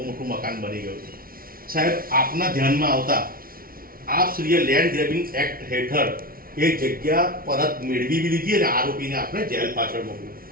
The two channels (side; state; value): left; late; 0.43 ms